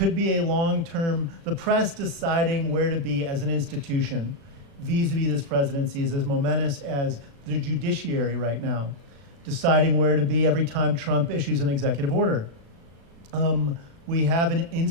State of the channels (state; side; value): late; left; 36 ms